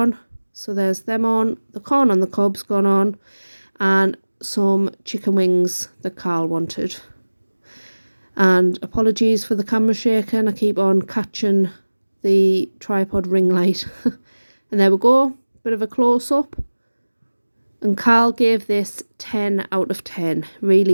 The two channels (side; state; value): both; inverted; correlation -1.00